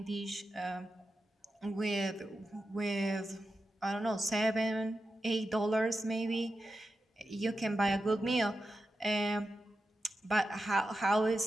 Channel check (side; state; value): both; normal; correlation 0.90